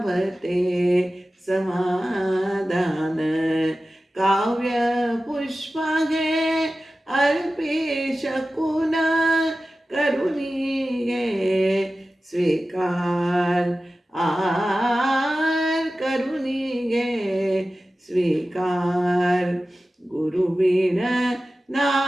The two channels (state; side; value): normal; both; correlation 0.95